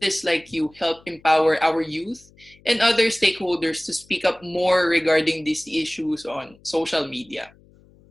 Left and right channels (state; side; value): noise; left; hum, 28 dB below the sound